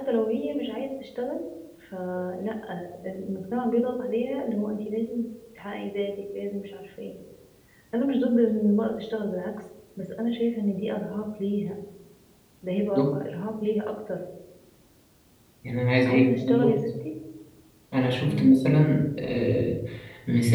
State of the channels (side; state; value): both; identical; correlation 1.00